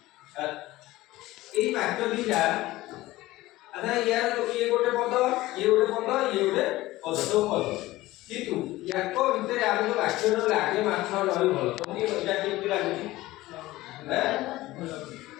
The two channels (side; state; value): right; quieter; 17.7 dB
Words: ये वाक्य दीटा अच्छा यार ये गोटे पद ये गोटे पद ये गोटे पद सब पद किंतु याक भितर आम जो वाक्य लागे माछ नई भल तुमको यहाँ केमती लगुच